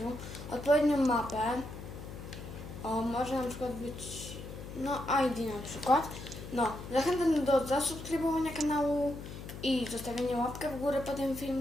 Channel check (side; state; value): left; noise; hum, 11 dB below the sound